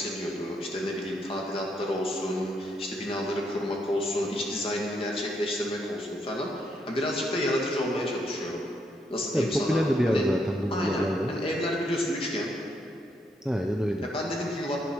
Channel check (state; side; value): normal; both; correlation 0.76